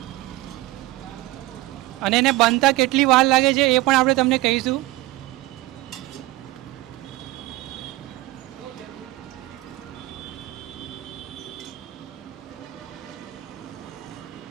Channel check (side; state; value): left; quieter; 18.0 dB